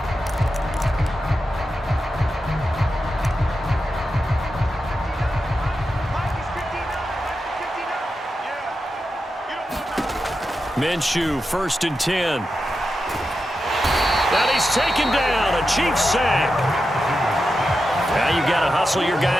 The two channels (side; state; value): both; normal; correlation 0.89